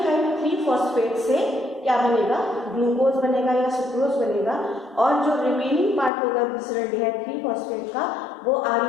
3 फॉस्फेट से क्या बनेगा, ग्लूकोज बनेगा या सुक्रोज बनेगा, और जो रिमेनिंग पार्ट होगा ग्लिसरॉल्डिहाइड 3 फॉस्फेट का वो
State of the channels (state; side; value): drops out; right; at 6.1 s